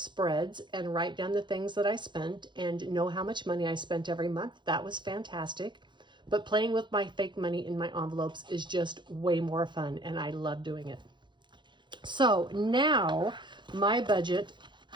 and write down the things that I spent and know how much money I spent every month. That was fantastic. But playing with my fake money in my envelopes is just way more fun, and I love doing it. So now my budget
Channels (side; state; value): left; late; 0.23 ms